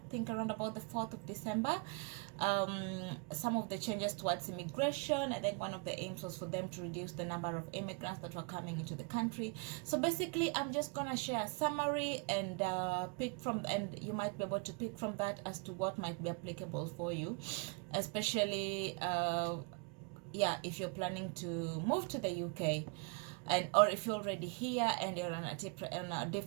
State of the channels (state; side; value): quieter; left; 31.1 dB